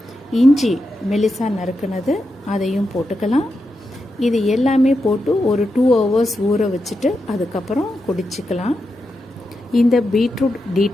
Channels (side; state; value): both; normal; correlation 0.87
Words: இஞ்சி மெலிசா நறுக்குனது அதையும் போட்டுக்கலாம். இது எல்லாமே போட்டு ஒரு 2 hours ஊற வச்சுட்டு அதுக்கப்புறம் குடிச்சிக்கலாம். இந்த பீட்ரூட்